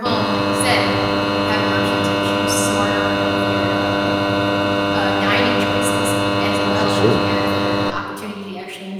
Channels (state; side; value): identical; both; correlation 1.00